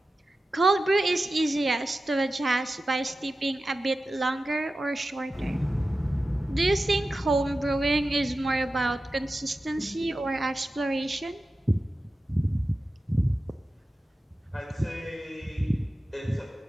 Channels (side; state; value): both; normal; correlation 0.93